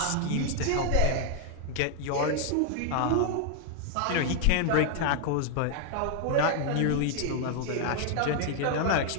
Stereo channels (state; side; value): different; both; correlation 0.00